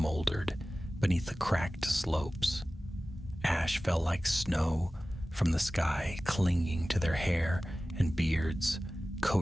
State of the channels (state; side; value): normal; both; correlation 0.96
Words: beneath the cracked slopes. Ash fell like snow from the sky, clinging to their hair and beards,